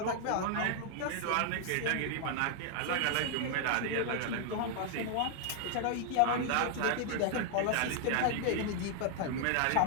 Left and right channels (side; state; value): both; different; correlation 0.00